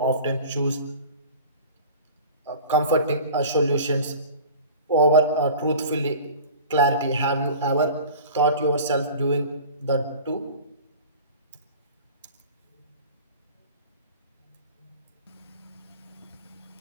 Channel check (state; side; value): inverted; both; correlation -0.39